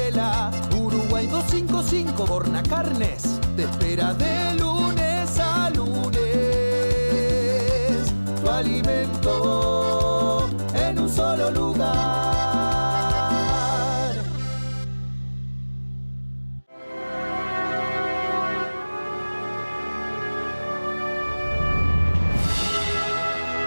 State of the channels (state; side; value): inverted; both; correlation -1.00